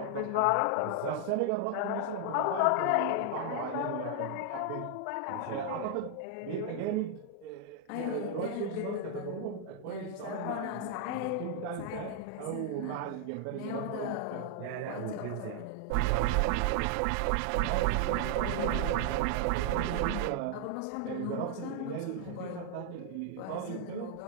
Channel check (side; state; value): both; different; correlation 0.00